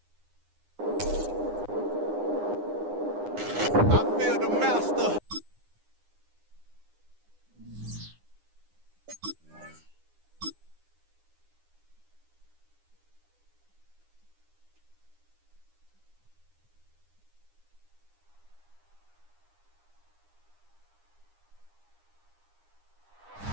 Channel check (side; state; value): left; late; 9.8 ms